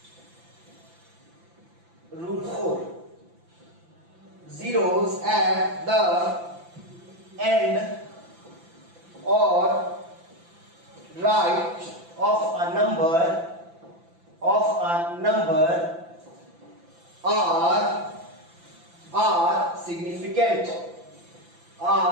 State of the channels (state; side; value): late; left; 5.9 ms